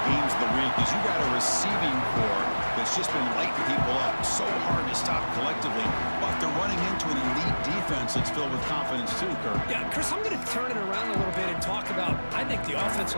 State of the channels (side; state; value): both; inverted; correlation -1.00